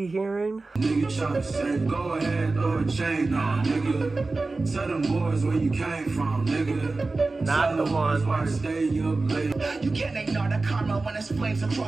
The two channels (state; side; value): quieter; left; 3.5 dB